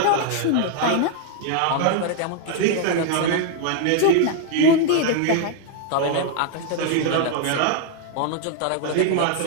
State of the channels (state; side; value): different; both; correlation 0.00